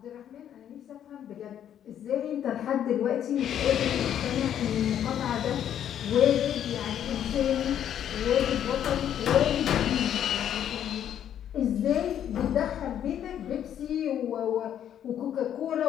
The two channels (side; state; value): right; quieter; 10.0 dB